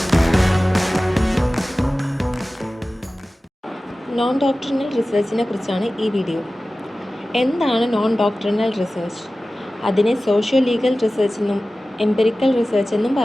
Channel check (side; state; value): both; normal; correlation 0.96